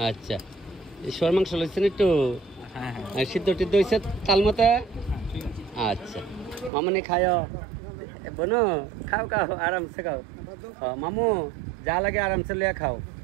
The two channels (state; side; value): drops out; left; at 6.7 s